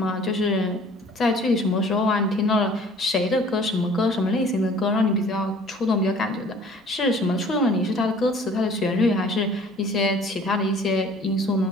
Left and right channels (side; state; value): both; normal; correlation 0.51